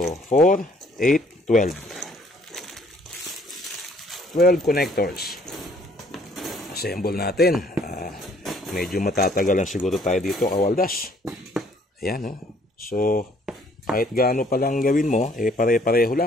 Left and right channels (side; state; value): both; normal; correlation 0.62